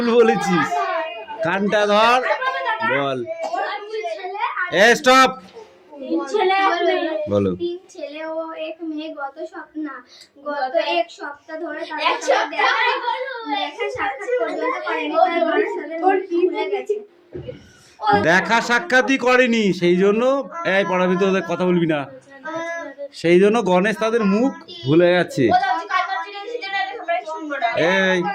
বলেছিস। কানটা ধর। বল। স্টপ। বলো। 3 ছেলে ও 1 মেয়ে গত এক সপ্তাহ ধরে দেখা সাক্ষাৎই করেনি, সেই জন্য এই পড়ার ভিতরে কথা বলবি না। সেই জন্য গণেশ তাদের মুখ ভুলে গেছে। এই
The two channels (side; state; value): both; identical; correlation 1.00